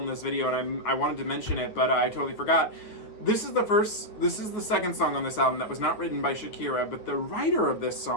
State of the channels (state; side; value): late; right; 9.5 ms